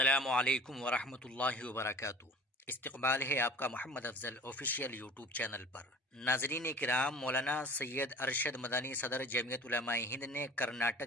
علیکم ورحمۃ اللہ وبرکاتہ۔ استقبال ہے آپ کا محمد افضل آفیشیل یوٹیوب چینل پر۔ ناظرین کرام، مولانا سید ارشد مدنی صدر جمعیت علماء ہند نے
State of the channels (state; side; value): normal; both; correlation 0.43